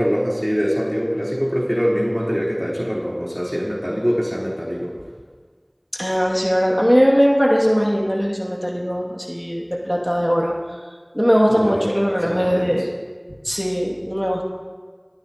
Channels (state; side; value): identical; both; correlation 1.00